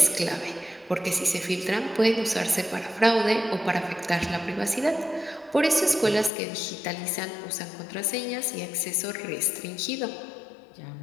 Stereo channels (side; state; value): right; drops out; at 6.3 s